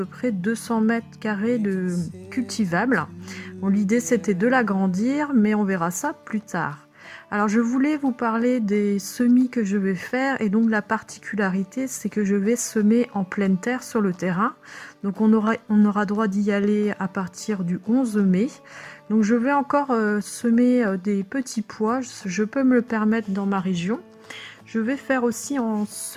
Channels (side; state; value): both; identical; correlation 1.00